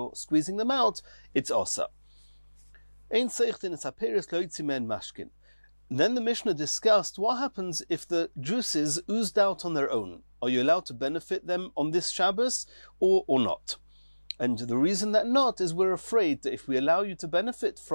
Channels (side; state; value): both; inverted; correlation -1.00